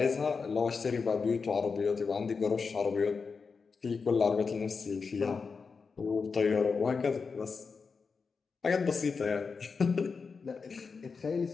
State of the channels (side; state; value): right; quieter; 5.1 dB